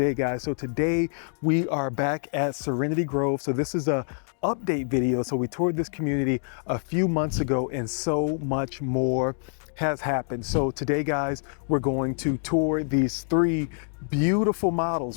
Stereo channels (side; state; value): right; silent; digital silence